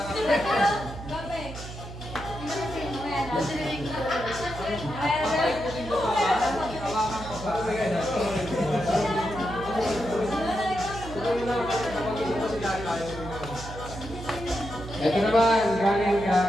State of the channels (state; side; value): noise; right; hum, 12 dB below the sound